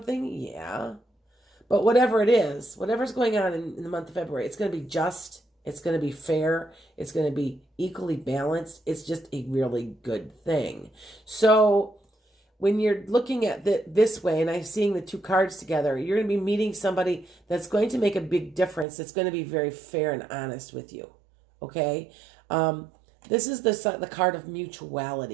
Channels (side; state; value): left; drops out; at 18.9 s